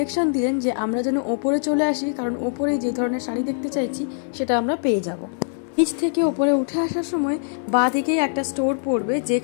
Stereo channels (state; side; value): silent; right; digital silence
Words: দিলেন যে আমরা যেন ওপরে চলে আসি, কারণ ওপরে যে ধরনের শাড়ি দেখতে চাইছি সেটা আমরা পেয়ে যাব। নিচ থেকে ওপরে উঠে আসার সময় বাঁ দিকেই একটা স্টোর পড়বে,